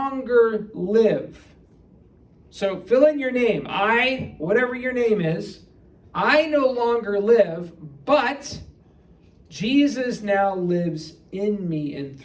live. So fill in your name. Whatever your name is, I no longer live, but Jesus now lives in me and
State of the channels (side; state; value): both; identical; correlation 1.00